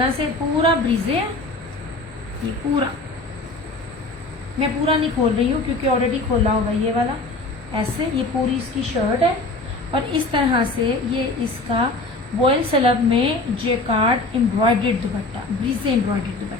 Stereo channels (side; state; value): right; quieter; 3.0 dB